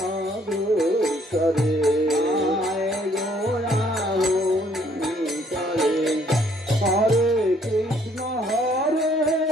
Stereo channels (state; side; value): normal; both; correlation 0.64